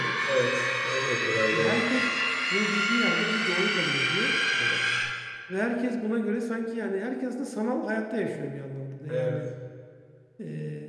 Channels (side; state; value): both; identical; correlation 1.00